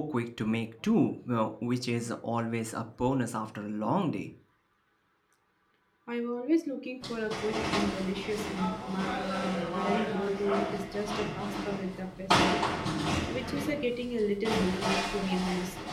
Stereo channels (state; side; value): identical; both; correlation 1.00